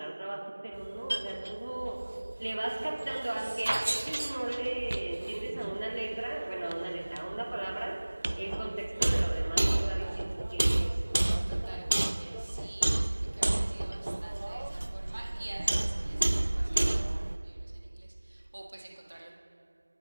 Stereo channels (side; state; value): both; inverted; correlation -1.00